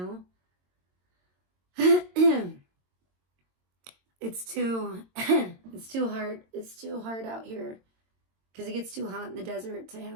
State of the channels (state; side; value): late; left; 22 ms